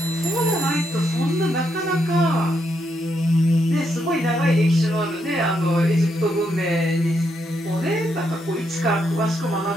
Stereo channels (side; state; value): both; normal; correlation 0.78